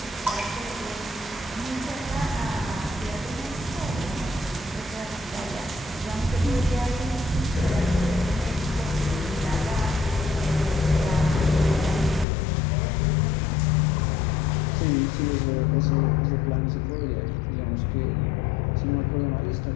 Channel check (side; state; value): right; drops out; at 12.2 s